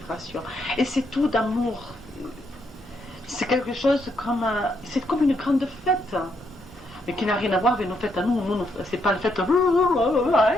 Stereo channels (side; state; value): both; normal; correlation 0.77